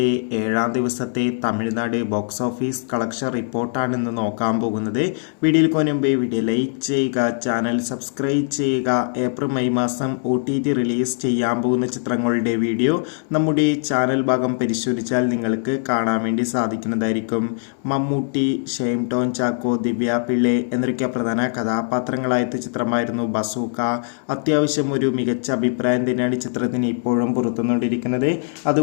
7ാം ദിവസത്തെ തമിഴ്നാട് ബോക്സ് ഓഫീസ് കളക്ഷൻ റിപ്പോർട്ടാണ് ഇന്ന് നോക്കാൻ പോകുന്നത്. വീഡിയോയിൽ മുൻപ് വീഡിയോ ലൈക്ക് ചെയ്യുക, ചാനൽ സബ്സ്ക്രൈബ് ചെയ്യുക. ഏപ്രിൽ മെയ് മാസം OTT റിലീസ് ചെയ്യാൻ പോകുന്ന ചിത്രങ്ങളുടെ വീഡിയോ നമ്മുടെ ചാനൽ ഭാഗം പരിശോധിച്ചാൽ നിങ്ങൾക്ക് കാണാൻ വേണ്ടി സാധിക്കുന്നതായിരിക്കും. മമ്മൂട്ടി, ഷെയ്ൻ ടോം ചാക്കോ, ദിവ്യ പിള്ളെ എന്നൊക്കെ പ്രധാന കഥാപാത്രങ്ങളായ ചിത്രമായിരുന്നു ബസൂക്ക. അത്യാവശ്യം ഒരു മികച്ച അഭിപ്രായം തന്നെയാണ് ചിത്രത്തിന് ഇപ്പോഴും പുറത്തുകൊണ്ടിരിക്കുന്നത്.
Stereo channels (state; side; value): silent; right; 65 dB below the other